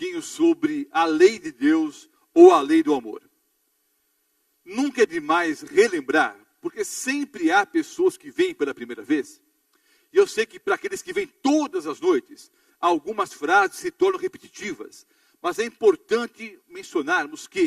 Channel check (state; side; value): identical; both; correlation 1.00